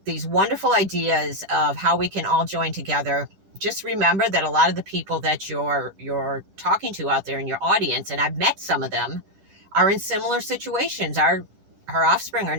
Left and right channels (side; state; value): left; late; 10 ms